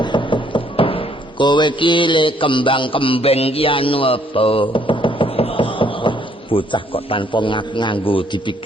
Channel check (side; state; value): both; normal; correlation 0.66